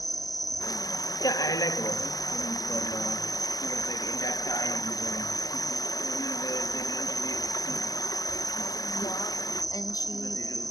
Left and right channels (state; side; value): late; right; 0.18 ms